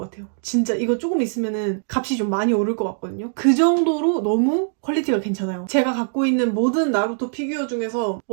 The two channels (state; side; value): silent; left; digital silence